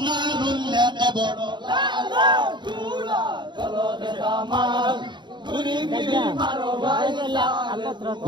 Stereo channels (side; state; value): left; late; 0.22 ms